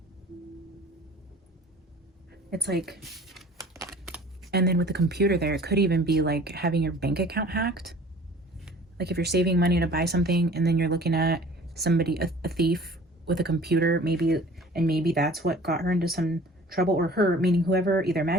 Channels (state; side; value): normal; both; correlation 0.47